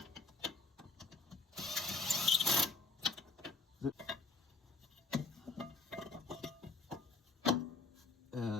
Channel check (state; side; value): quieter; right; 3.7 dB